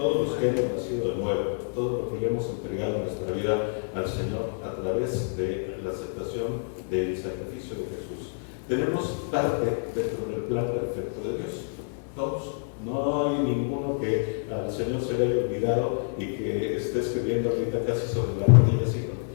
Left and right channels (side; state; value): right; silent; 60 dB below the other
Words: los que hemos nacido de nuevo, todo lo que le hemos entregado en nuestra vida al Señor a través de la aceptación del sacrificio de Jesús, tenemos parte dentro del plan perfecto de Dios. Todos. No hay ninguno que al Señor se le haya olvidado y que esté escribiendo ahorita casi sobre la rodilla, así como: